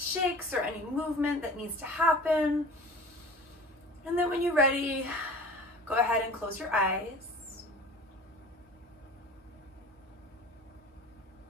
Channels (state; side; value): normal; both; correlation 0.41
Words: or any movement that needs to happen. And then when you're ready, go ahead and close your eyes.